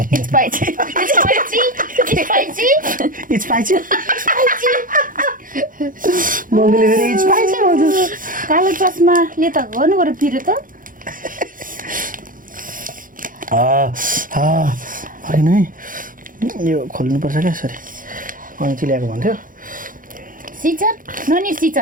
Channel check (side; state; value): left; late; 0.40 ms